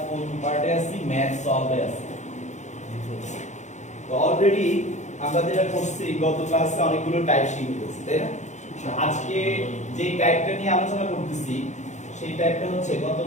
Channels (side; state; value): right; late; 0.34 ms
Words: কোন পার্টে আছি ম্যাথ সলভে আছি তো অলরেডি আমরা যেটা করছি গত ক্লাসে অনেকগুলো টাইপ শিখেছি তাই না আজকে যে টাইপটা নিয়ে আলোচনা করতেছি সেই টাইপটা হচ্ছে গত